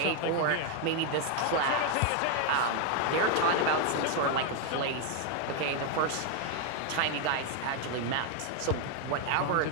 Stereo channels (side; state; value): both; different; correlation 0.01